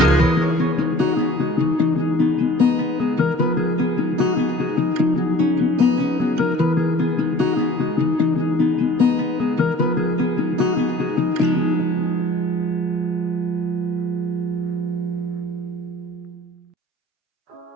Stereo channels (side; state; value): both; normal; correlation 0.48